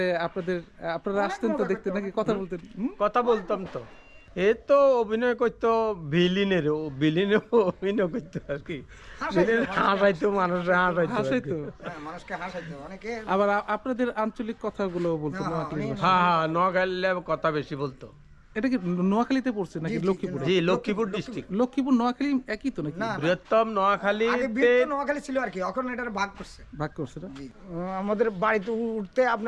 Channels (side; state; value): both; identical; correlation 1.00